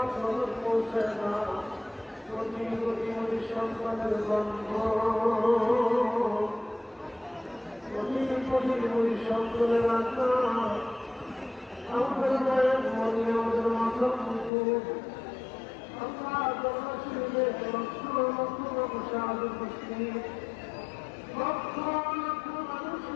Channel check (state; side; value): drops out; right; at 14.5 s